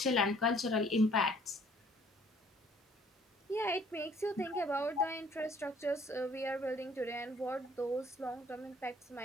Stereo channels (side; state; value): both; normal; correlation 0.59